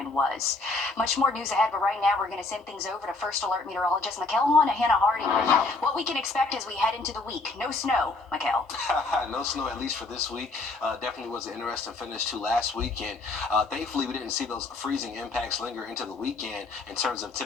was. Much more news ahead, but right now we're going to send things over to First Alert meteorologist Mikkel and Hannah Hardy. What we can expect as we head into the week. No snow, Mikkel. No snow, at least for this week. Definitely was an interesting finish to last weekend. Thankfully, we didn't see those freezing impacts linger into the weekend in terms of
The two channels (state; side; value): quieter; right; 3.5 dB